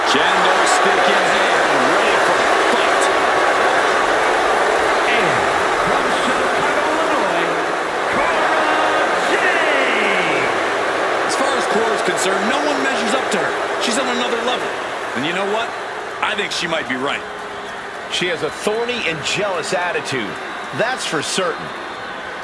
Kendo stick in hand, ready for a fight. And from Chicago, Illinois, Cora Jade. As far as Cora's concerned, no one measures up to her. She's on another level. And you know what? I think she might be right. She has a thorny and jealous attitude. That's for certain.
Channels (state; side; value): identical; both; correlation 1.00